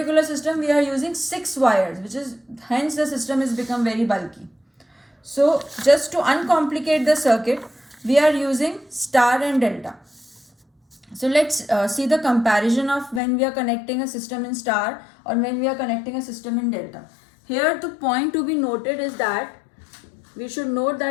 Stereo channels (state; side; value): drops out; right; at 13.2 s